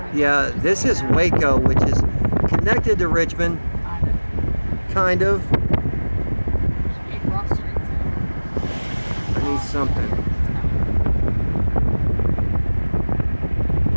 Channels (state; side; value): inverted; both; correlation -1.00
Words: Yeah, this is Waco, which is connected to Richmond, kind of. I need something.